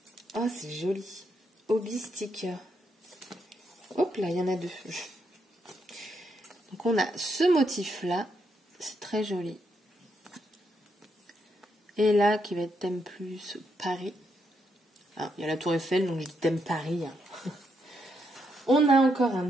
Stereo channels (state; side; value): normal; both; correlation 0.79